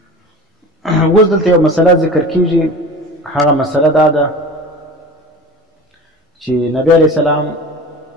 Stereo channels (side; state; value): both; normal; correlation 0.35